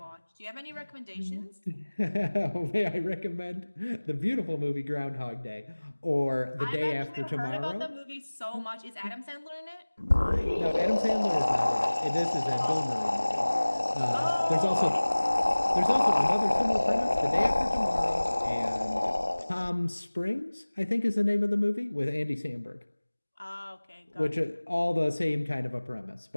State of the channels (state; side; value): inverted; both; correlation -1.00